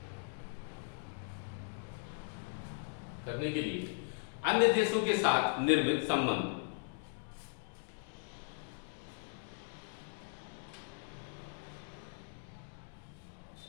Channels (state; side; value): silent; right; digital silence